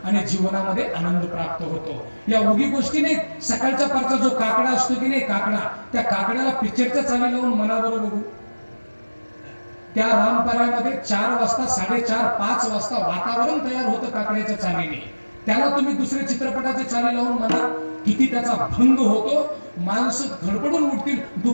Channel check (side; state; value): both; inverted; correlation -1.00